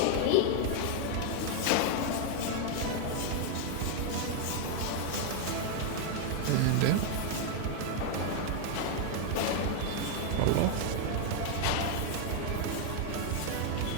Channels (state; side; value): different; both; correlation 0.00